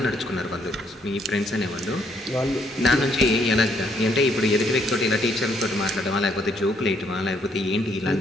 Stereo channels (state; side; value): normal; both; correlation 0.70